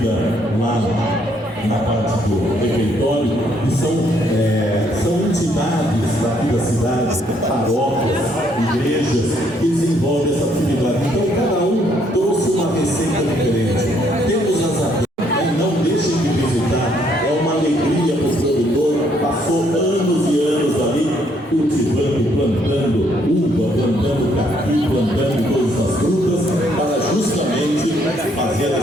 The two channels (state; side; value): normal; both; correlation 0.69